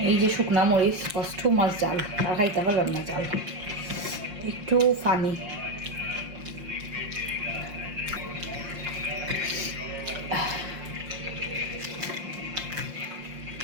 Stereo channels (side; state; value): left; late; 5.7 ms